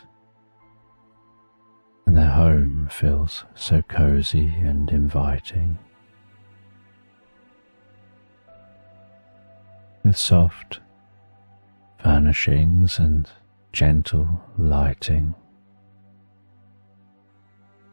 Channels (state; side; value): inverted; both; correlation -1.00